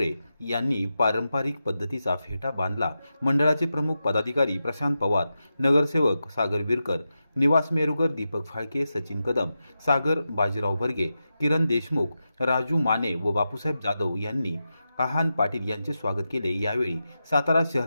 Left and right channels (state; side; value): inverted; both; correlation -0.90